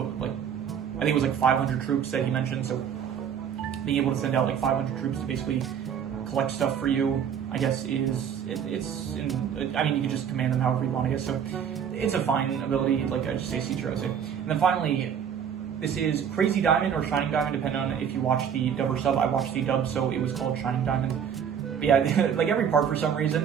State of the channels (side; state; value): left; quieter; 8.1 dB